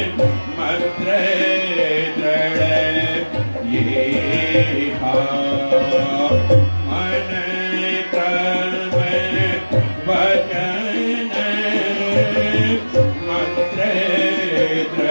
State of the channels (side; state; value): both; inverted; correlation -1.00